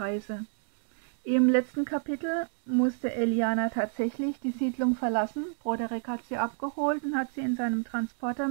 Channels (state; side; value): silent; left; digital silence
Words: Im letzten Kapitel musste Eliana tatsächlich die Siedlung verlassen. Broderick hat sie abgeholt und hat sie in seinem Transporter